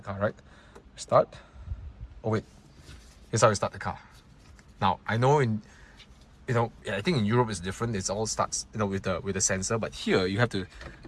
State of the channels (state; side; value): identical; both; correlation 1.00